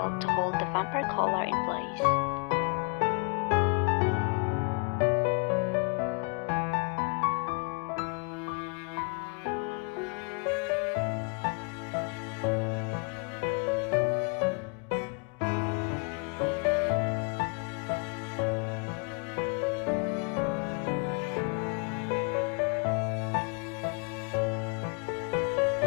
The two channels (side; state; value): right; quieter; 37.3 dB